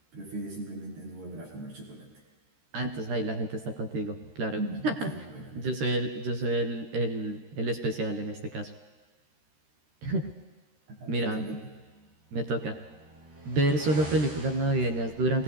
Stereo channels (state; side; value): late; left; 13 ms